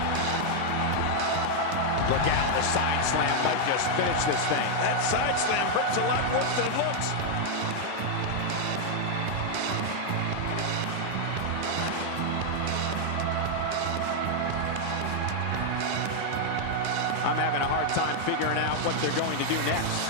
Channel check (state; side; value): different; both; correlation 0.00